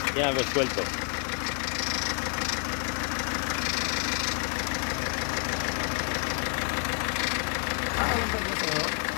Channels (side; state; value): right; quieter; 38.9 dB